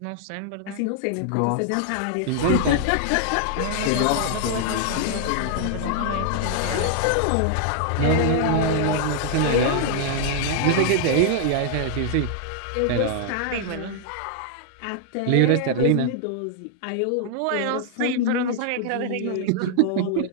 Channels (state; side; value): different; both; correlation 0.00